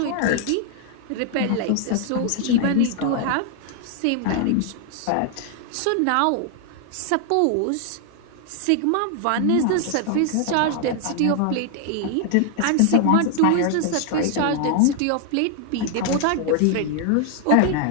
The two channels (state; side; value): different; both; correlation 0.00